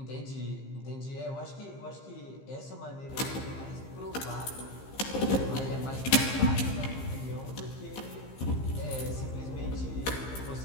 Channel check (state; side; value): late; right; 15 ms